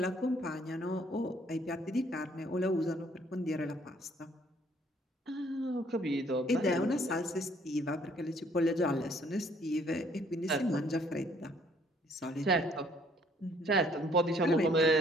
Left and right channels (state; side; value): normal; both; correlation 0.62